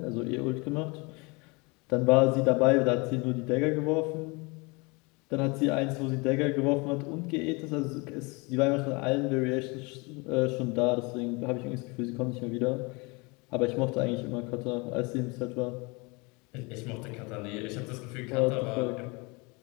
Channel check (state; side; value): quieter; right; 27.9 dB